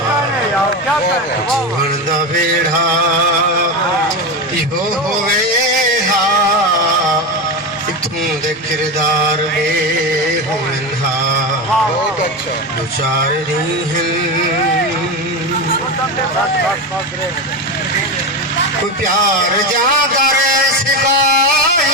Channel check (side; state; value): left; noise; hum, 29 dB below the sound